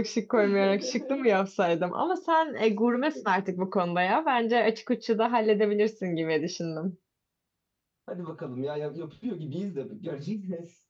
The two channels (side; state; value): both; identical; correlation 1.00